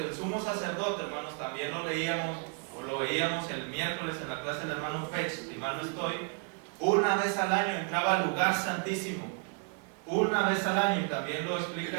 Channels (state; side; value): quieter; left; 38.2 dB